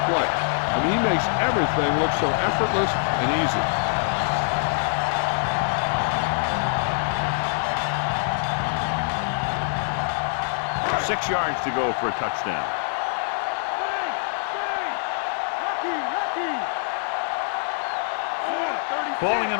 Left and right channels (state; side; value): silent; right; digital silence